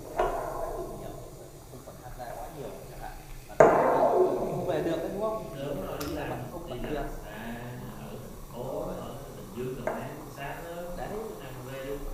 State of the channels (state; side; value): identical; both; correlation 1.00